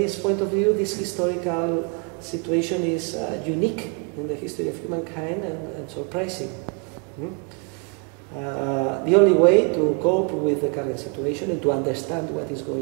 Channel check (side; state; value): left; quieter; 35.6 dB